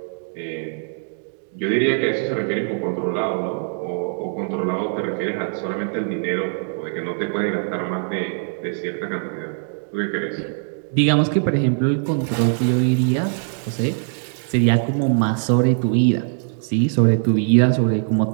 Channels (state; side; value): silent; left; digital silence